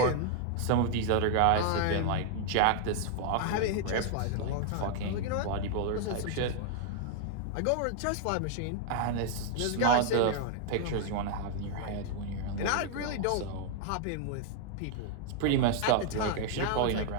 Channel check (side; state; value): both; different; correlation 0.00